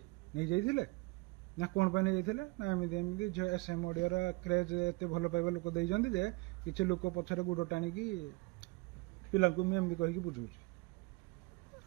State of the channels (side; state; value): left; quieter; 25.8 dB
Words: ନେଇ ଯାଇଥିଲେ ନା କଣ ପାଇଁ ନେଇ ଯାଇଥିଲେ ନା ଏମିତି ଝିଅ SM ଅଡିଓର କ୍ରେଜ୍ ଏତେ ଭଲ ପାଇବା ଲୋକ ଦେଇଛନ୍ତି ଯେ କିଛି ଲୋକ ପଛରେ ଗୋଡ ଟାଣିକି ପିଲାଙ୍କୁ ମୁଁ ଏମିତି କହିକି ବୁଝଉଛି।